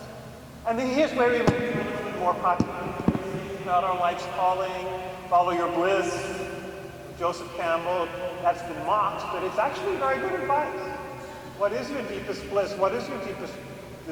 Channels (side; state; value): both; identical; correlation 1.00